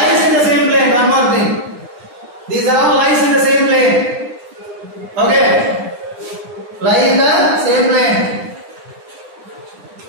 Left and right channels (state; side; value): late; left; 9.8 ms